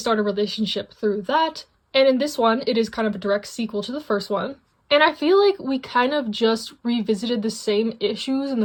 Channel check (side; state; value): both; identical; correlation 1.00